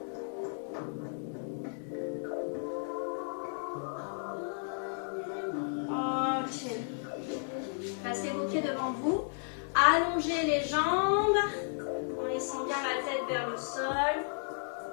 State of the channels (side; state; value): right; silent; digital silence